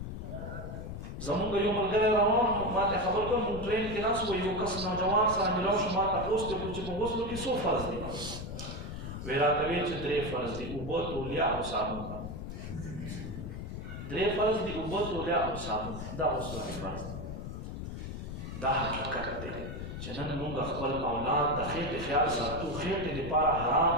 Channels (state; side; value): noise; left; rumble, 7 dB below the sound